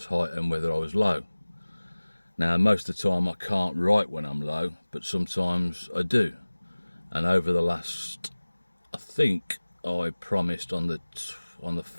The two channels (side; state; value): both; inverted; correlation -1.00